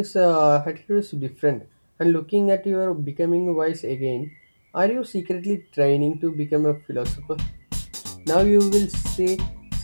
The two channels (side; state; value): both; inverted; correlation -1.00